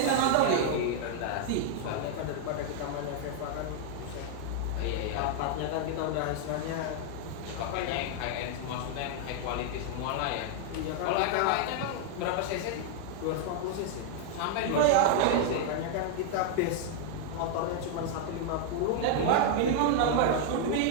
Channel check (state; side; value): different; both; correlation 0.00